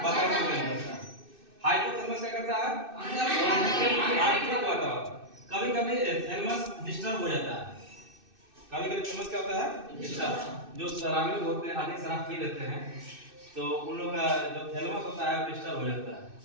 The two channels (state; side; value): late; left; 2.6 ms